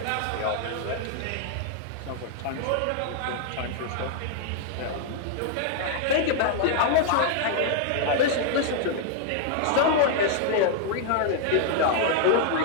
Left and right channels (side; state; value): both; different; correlation 0.00